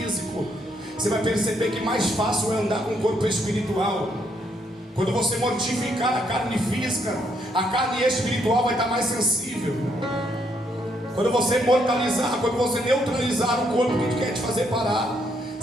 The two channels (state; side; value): normal; both; correlation 0.73